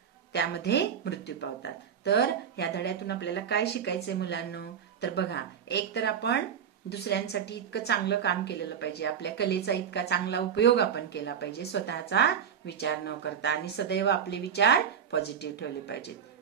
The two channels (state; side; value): quieter; left; 7.9 dB